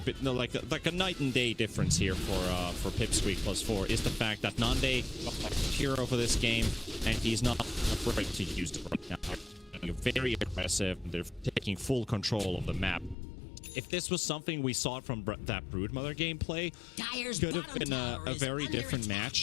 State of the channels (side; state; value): right; drops out; at 13.2 s